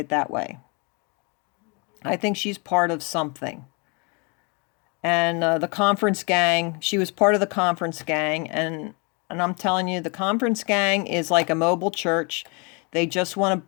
that way. I think she's part of something. And the conference gang, she was part of the conference gang. And I'm telling you, the conference gang is like a mobile church. They just want to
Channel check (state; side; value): quieter; right; 31.8 dB